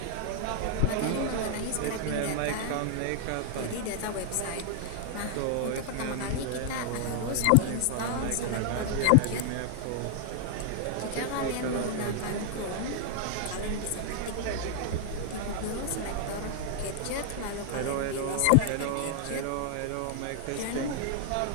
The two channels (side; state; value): both; different; correlation 0.00